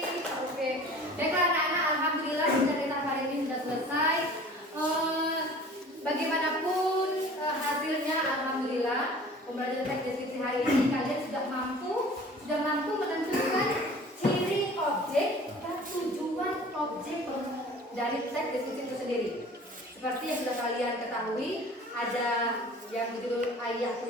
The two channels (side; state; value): both; normal; correlation 0.45